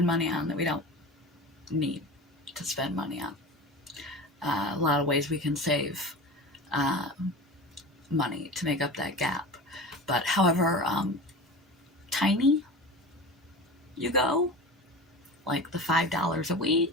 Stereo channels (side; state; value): both; normal; correlation 0.32